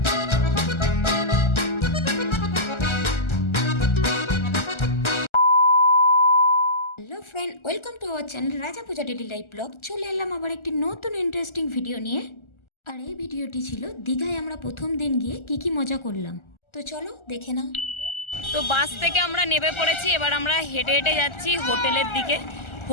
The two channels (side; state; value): right; late; 1.4 ms